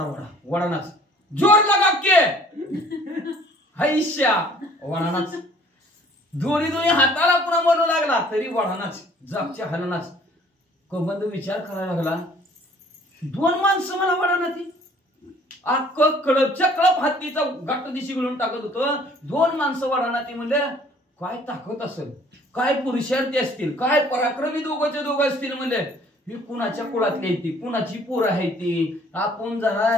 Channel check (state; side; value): normal; both; correlation 0.56